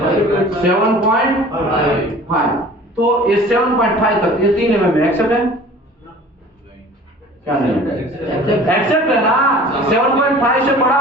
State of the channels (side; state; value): both; normal; correlation 0.46